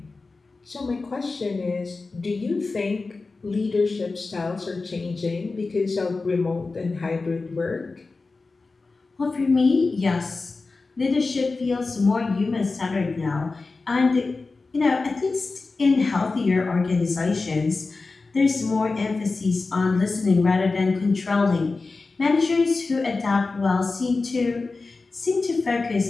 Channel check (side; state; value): right; quieter; 3.8 dB